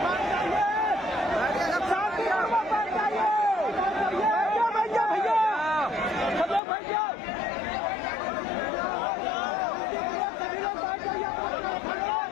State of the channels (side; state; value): right; drops out; at 6.6 s